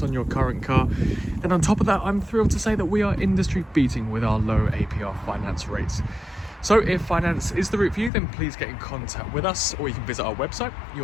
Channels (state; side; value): drops out; right; at 8.1 s